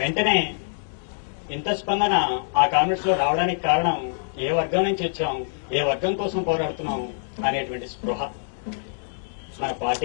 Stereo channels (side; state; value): right; silent; digital silence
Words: ఇంత స్పందన ఆ కామ్రేడ్స్ లో రావడానికి కారణం ఏ వర్గం నుంచి వచ్చాం, ఏ వర్గం కోసం పోరాడుతున్నాం అనేటువంటి స్పృహ. మన